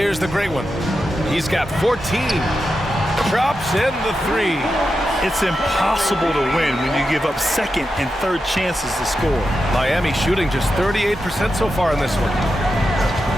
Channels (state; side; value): normal; both; correlation 0.89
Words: the great one. He's got 14. Drops in the 3. It's impossible to win when you give up second and third chances to score. Miami shooting just 38% so far in this one.